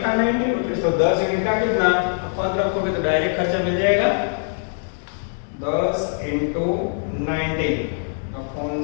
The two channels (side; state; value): right; silent; digital silence